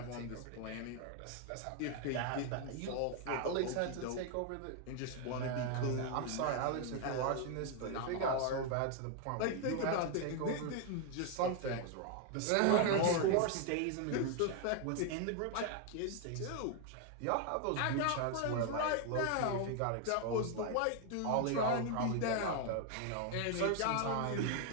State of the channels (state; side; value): different; both; correlation 0.00